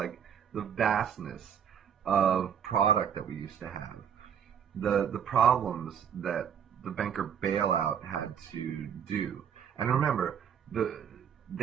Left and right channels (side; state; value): left; quieter; 8.2 dB